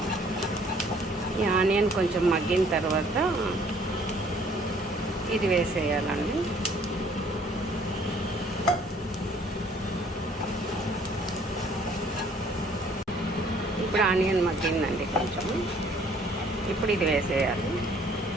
ఈ ఆనియన్ కొంచెం మగ్గిన తర్వాత ఇది వేసేయాలండి. ఇప్పుడు ఆనియన్ మగ్గిందండి కొంచెం. ఇప్పుడు ఇది వేసేయాలి.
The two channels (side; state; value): both; normal; correlation 0.59